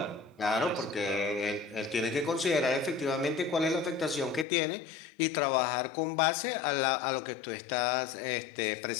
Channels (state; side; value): drops out; right; at 4.5 s